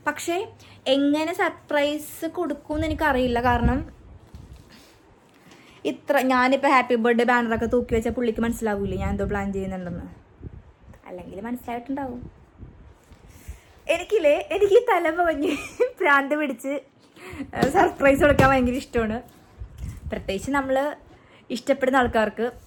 പക്ഷേ എങ്ങനെ സർപ്രൈസ് കൊടുക്കുമെന്ന് എനിക്കറിയില്ല. കാരണം ഞാനിപ്പോൾ ഹാപ്പി ബർത്ത്ഡേ ബാനറൊക്കെ തൂക്കി വെച്ചാൽ പുള്ളിക്ക് മനസ്സിലാവൂലേ ഞാൻ എന്തോ പ്ലാൻ ചെയ്യുന്നുണ്ടെന്ന്. അല്ലെങ്കിൽ മനസ്സിലായിട്ടുണ്ടാവും. എനിക്ക് ഈ തലമുറഞ്ഞ് ഭ്രാന്ത് പിടിച്ച് സർപ്രൈസ് കൊടുക്കാൻ ഭയങ്കര ഇഷ്ടമാണ്. പ്രത്യേകിച്ച് നമ്മൾ ഇഷ്ടപ്പെടുന്ന ആൾക്കാർക്ക്.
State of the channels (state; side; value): identical; both; correlation 1.00